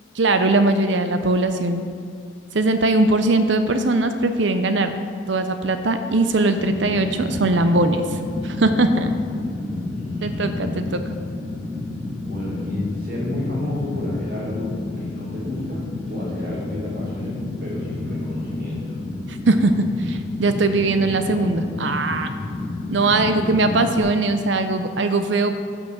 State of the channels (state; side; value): normal; both; correlation 0.40